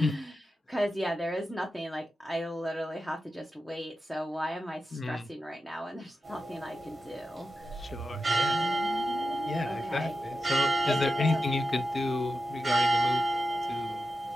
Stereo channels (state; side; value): normal; both; correlation 0.91